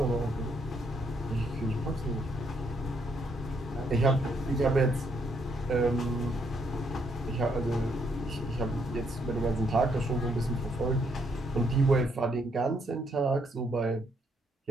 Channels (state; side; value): normal; both; correlation 0.73